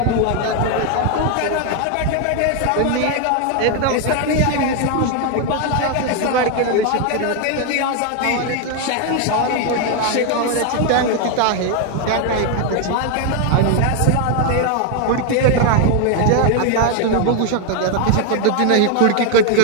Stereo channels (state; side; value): different; both; correlation 0.01